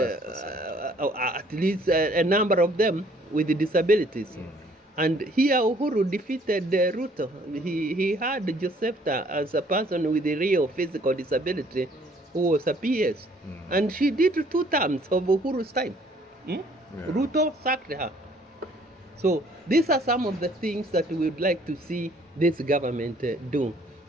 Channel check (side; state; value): both; normal; correlation 0.60